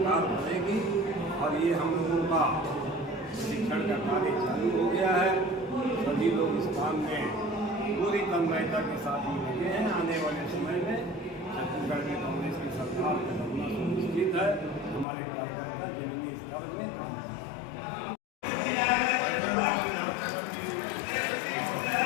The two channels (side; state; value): right; drops out; at 15.1 s